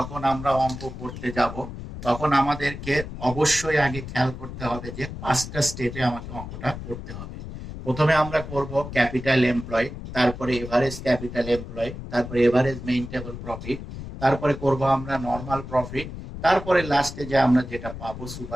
আমরা অঙ্ক করতে যাব তখন আমাদেরকে অবশ্যই আগে খেয়াল করতে হবে যে 5টা স্টেপে আমাকে অঙ্কটা করতে হবে। প্রথমে আমরা করব ক্যাপিটাল এমপ্লয়, তারপরে এভারেজ ক্যাপিটাল এমপ্লয়, তারপরে এভারেজ মেইনটেবল প্রফিট, তারপরে করব আমরা নর্মাল প্রফিট, তারপরে লাস্টে যে আমরা যেটা পাবো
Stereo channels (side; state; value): left; noise; rumble, 10 dB below the sound